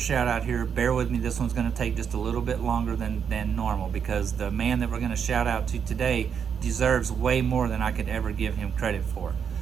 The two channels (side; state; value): left; quieter; 7.3 dB